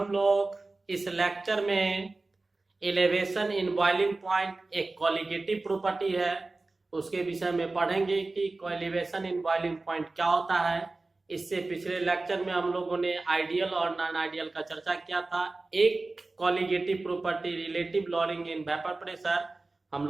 लोग इस लेक्चर में एलिवेशन इन बॉइलिंग पॉइंट एक कॉलिगेटिव प्रॉपर्टी है, उसके विषय में पढ़ेंगे कि एलिवेशन इन बॉइलिंग पॉइंट क्या होता है। इससे पिछले लेक्चर में हम लोगों ने आइडियल और नॉन आइडियल का चर्चा किया था। एक colligative property relative lowering in vapour pressure हम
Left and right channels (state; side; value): quieter; left; 3.3 dB